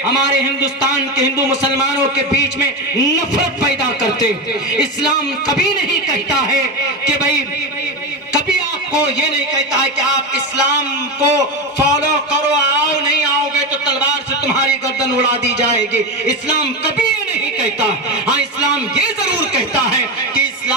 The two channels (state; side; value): normal; both; correlation 0.16